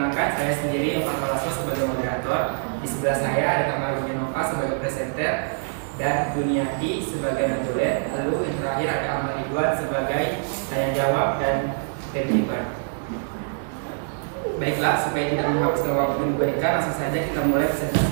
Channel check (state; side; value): silent; left; digital silence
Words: saya sendiri yang Pak Lasso sebagai moderator. Di sebelah saya ada Kamal Nova sebagai presenter dan Duniati sebagai notulen. Lalu yang terakhir ada Ahmad Ridwan sebagai tanya jawab dan timekeeper. Baiklah, supaya tidak menghabiskan waktu yang diberikan, langsung saja kita mulai